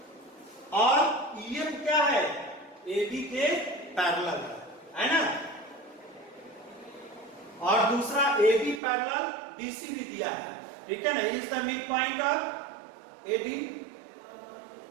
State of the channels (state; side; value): drops out; left; at 8.8 s